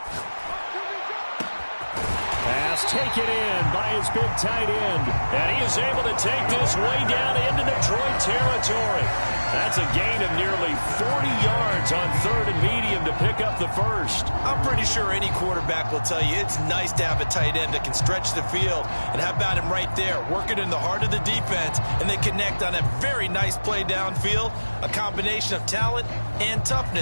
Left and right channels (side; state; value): both; inverted; correlation -1.00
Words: Pass taken in by his big tight end. And he is able to take this way down into Detroit territory. That's a gain of nearly 40 yards on third and medium to pick up the first. I'm pretty sure any quarterback will tell you it's nice to have a tight end that can stretch the field. And how about him right there, working in the heart of the defense, and they connect on a very nice play downfield, a combination of talent and